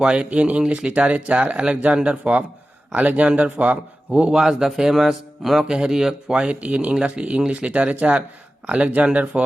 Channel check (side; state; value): both; normal; correlation 0.95